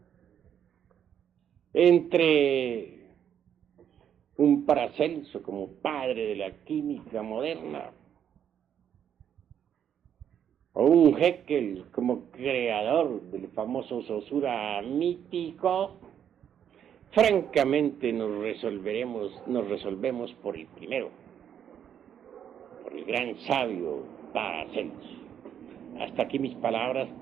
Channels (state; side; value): quieter; left; 9.1 dB